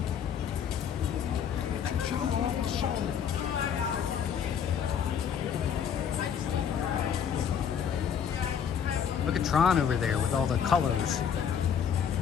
Look at Tron over there with all the colors.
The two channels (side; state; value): right; quieter; 7.8 dB